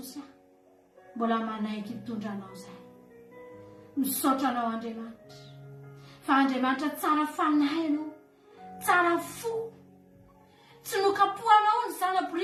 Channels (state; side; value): identical; both; correlation 1.00